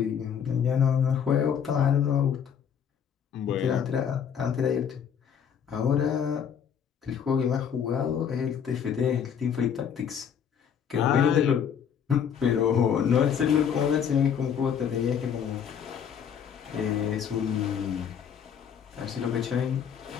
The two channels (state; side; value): quieter; right; 7.9 dB